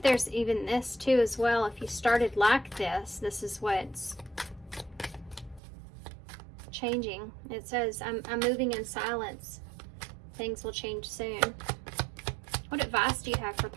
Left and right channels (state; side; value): drops out; left; at 5.6 s